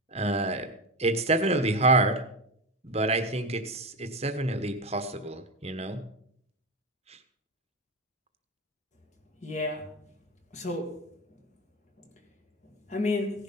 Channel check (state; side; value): normal; both; correlation 0.20